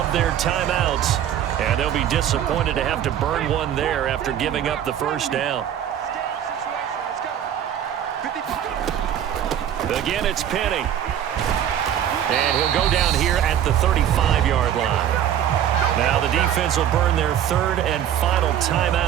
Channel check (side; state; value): left; quieter; 10.2 dB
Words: their timeouts, and they'll be disappointed to have to burn one there after giving up the first down. Again, it's Penny. And he'll go down here at the 35-yard line. Now the defense will burn their 3rd and final